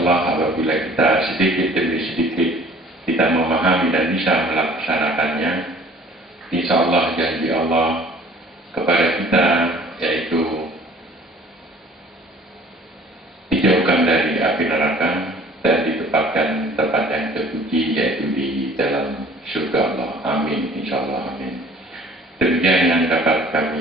apabila kita sedikit demi sedikit kita memahami dan bisa melaksanakannya, insya Allah janji Allah kepada kita yaitu dijauhkan dari api neraka dan ditempatkan tempat yang terpuji yaitu di dalam surga Allah. Amin, insya Allah, amin. Demikian yang dapat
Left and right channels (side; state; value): both; normal; correlation 0.51